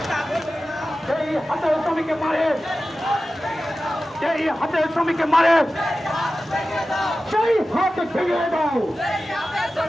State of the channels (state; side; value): normal; both; correlation 0.94